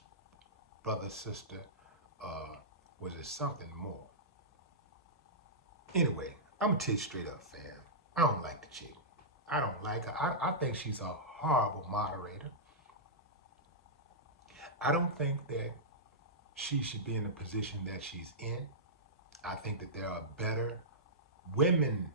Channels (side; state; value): both; normal; correlation -0.15